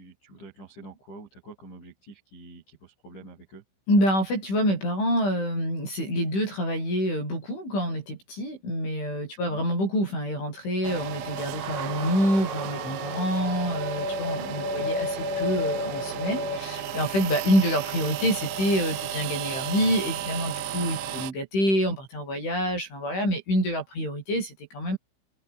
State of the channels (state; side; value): late; right; 15 ms